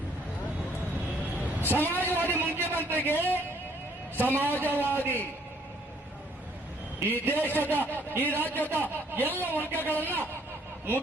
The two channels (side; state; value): both; normal; correlation 0.63